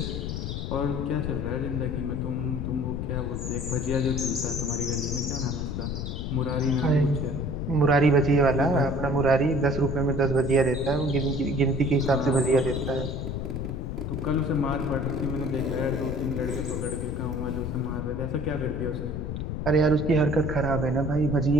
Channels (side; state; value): left; noise; rumble, 4 dB below the sound